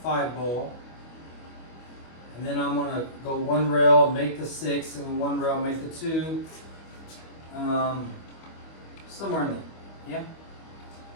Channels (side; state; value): right; late; 25 ms